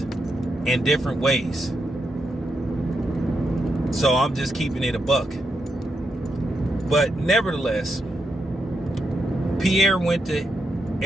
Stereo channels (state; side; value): normal; both; correlation 0.83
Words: in different ways. So I'm just keeping it a buck. But nevertheless, Pierre went to